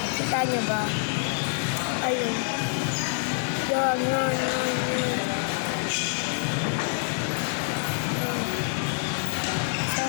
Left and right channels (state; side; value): silent; right; 61 dB below the other